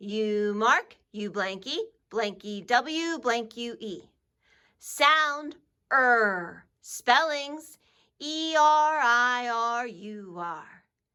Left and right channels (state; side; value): identical; both; correlation 1.00